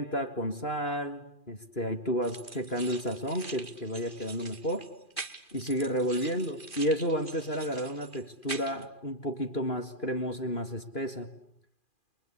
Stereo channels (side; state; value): right; late; 2.4 ms